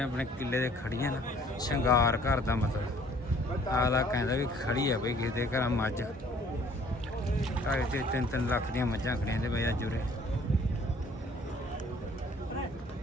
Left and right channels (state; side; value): normal; both; correlation 0.57